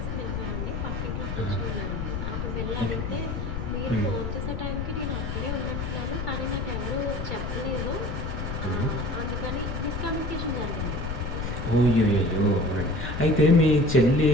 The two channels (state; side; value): noise; left; rumble, 4 dB below the sound